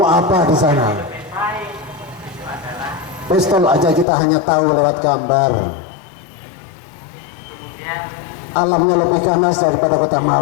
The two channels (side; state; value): right; drops out; at 4.0 s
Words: apa di sana? Pistol aja kita hanya tahu lewat gambar. Alamnya lebih ganas daripada kota